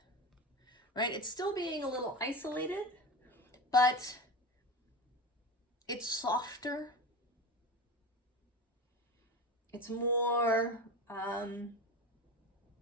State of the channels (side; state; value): both; normal; correlation 0.26